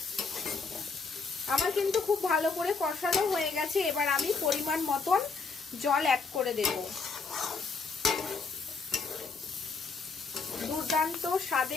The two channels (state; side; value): quieter; right; 4.5 dB